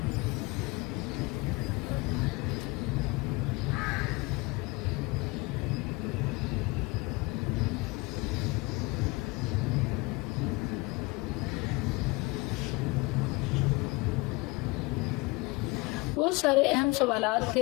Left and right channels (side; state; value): right; quieter; 25.0 dB